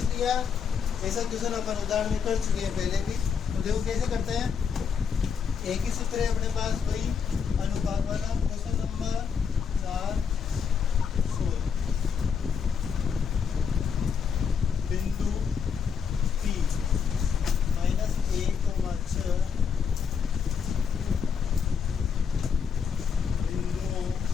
लिया। ऐसा क्वेश्चन अपन उदाहरण में कर चुके हैं पहले भी। तो देखो कैसे करते हैं, एक ही सूत्र है अपने पास, वही अनुपात वाला। क्वेश्चन नंबर 4 बिंदु P -1,6 बिंदुओं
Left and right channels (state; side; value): quieter; right; 6.6 dB